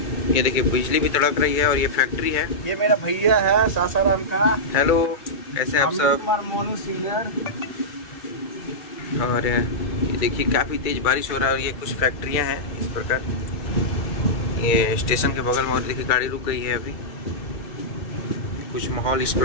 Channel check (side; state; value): right; late; 2.3 ms